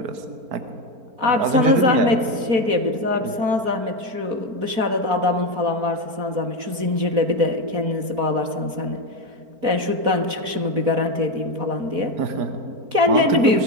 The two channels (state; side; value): late; left; 4.1 ms